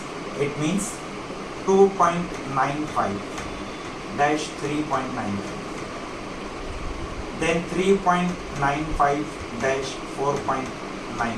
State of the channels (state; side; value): identical; both; correlation 1.00